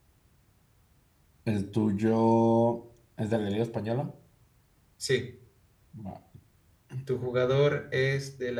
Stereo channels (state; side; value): identical; both; correlation 1.00